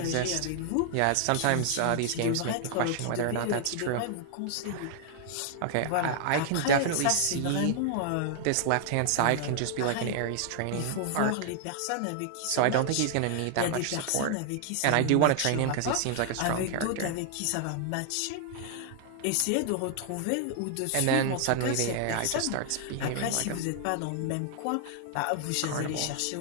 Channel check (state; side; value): different; both; correlation -0.01